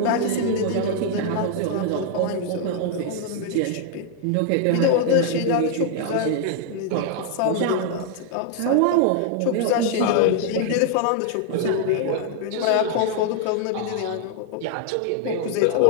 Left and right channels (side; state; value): both; different; correlation 0.00